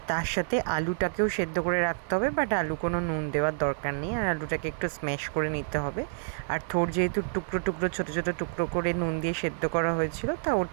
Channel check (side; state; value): left; silent; digital silence